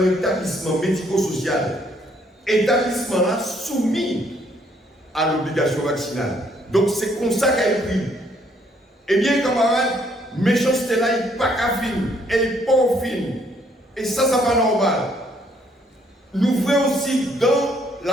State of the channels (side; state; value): both; normal; correlation 0.67